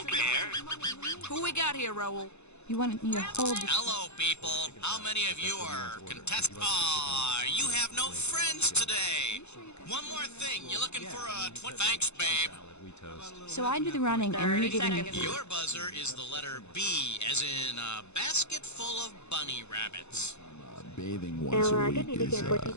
care. Who we got here, Raoul? You want me to hold the... Hello, people. How many of you are contestants? Aw, you have no friends today. One more thing. You looking for a Thanks, babe. So I do the running and you 30 give me... seconds. Your buzzer is the letter B, as in a basket full of bunny rabbits. Bathing once a week is, 20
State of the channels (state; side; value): late; right; 0.81 ms